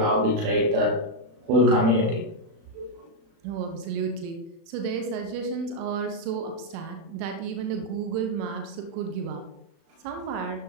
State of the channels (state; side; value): late; left; 36 ms